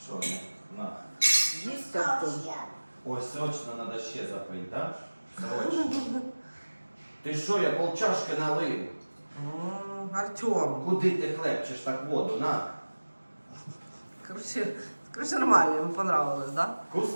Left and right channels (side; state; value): both; inverted; correlation -1.00